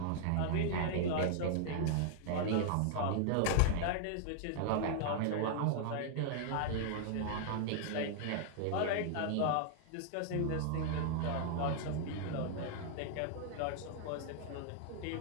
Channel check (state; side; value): different; both; correlation -0.01